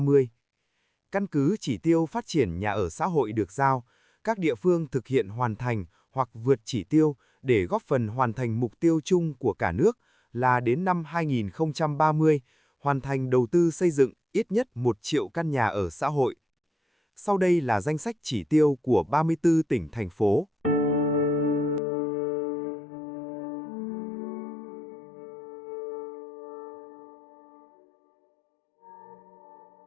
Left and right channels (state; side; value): drops out; right; at 21.8 s